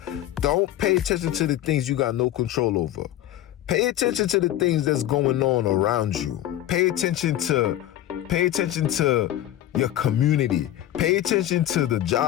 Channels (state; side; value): quieter; right; 12.9 dB